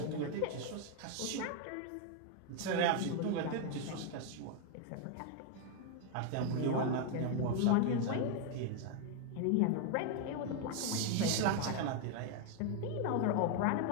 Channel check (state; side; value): different; both; correlation 0.00